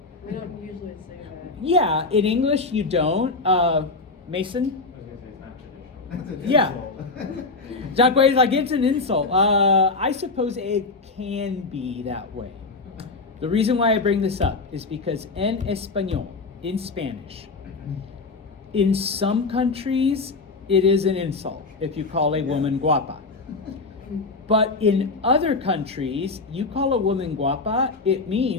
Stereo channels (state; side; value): quieter; right; 3.8 dB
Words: We don't usually say that. Yeah, in English you don't. Mason? I was going to say it's not traditional. Yeah. Jacque is like, it's an insult. I suppose it can be that way. The reason why I bring this up is because en español, in Spanish, in some countries, it is an insult if you call a woman guapa. But in other countries, you call a woman guapa, it